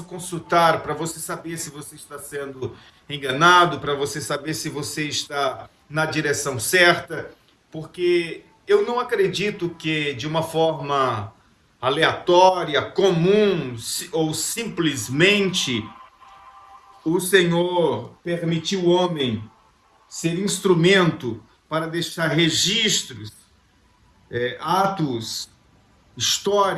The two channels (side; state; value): both; identical; correlation 1.00